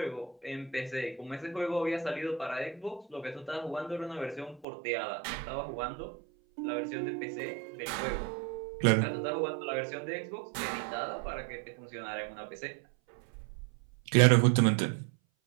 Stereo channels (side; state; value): left; drops out; at 4.7 s